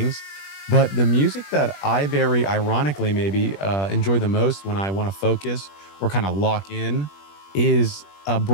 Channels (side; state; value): right; late; 21 ms